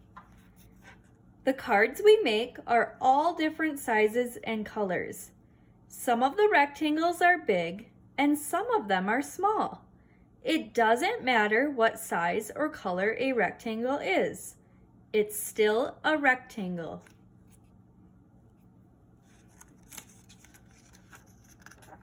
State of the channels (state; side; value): identical; both; correlation 1.00